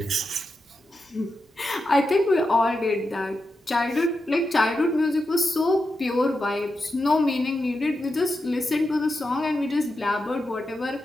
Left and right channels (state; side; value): normal; both; correlation 0.88